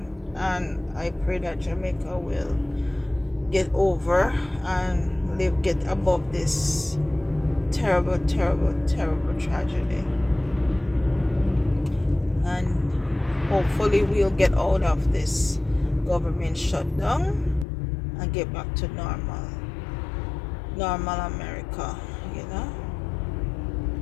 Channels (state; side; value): drops out; right; at 17.7 s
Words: and I pray that Jamaica will get over and get above this terrible tragedy, and hopefully we'll get out of this government shutdown and get back to normal America.